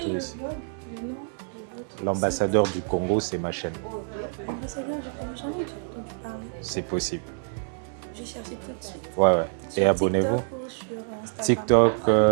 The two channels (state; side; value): silent; left; 60 dB below the other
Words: ici. L'ambassadeur du Congo, c'est ma chaîne. L'ambassadeur du Congo, j'en ai entendu parler. C'est possible. Je vais chercher tout de suite. Ouais. Et abonnez-vous. TikTok,